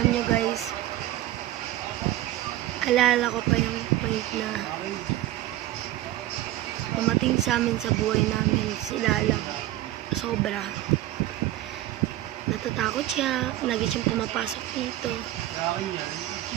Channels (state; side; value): quieter; left; 14.9 dB